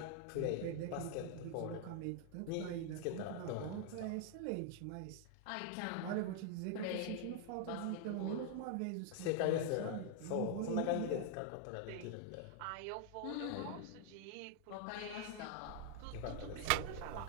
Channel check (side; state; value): both; different; correlation 0.00